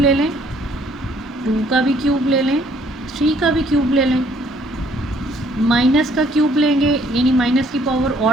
लें, 2 का भी क्यूब ले लें, 3 का भी क्यूब ले लें, माइनस का क्यूब लेंगे यानी माइनस की पावर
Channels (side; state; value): both; normal; correlation 0.63